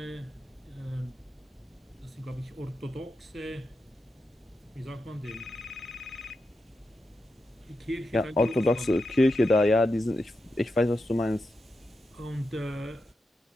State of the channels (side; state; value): both; normal; correlation 0.88